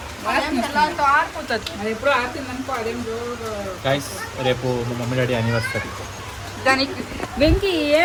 ఎప్పుడు ఆడుతుందనుకో. అదేం రేపు మా మమ్మీ డాడీ యానివర్సరీ. దానికి వెంకీ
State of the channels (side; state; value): both; identical; correlation 1.00